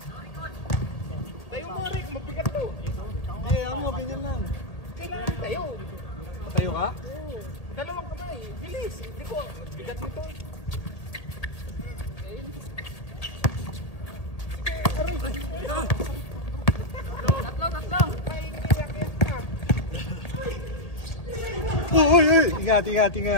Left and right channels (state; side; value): late; right; 1.8 ms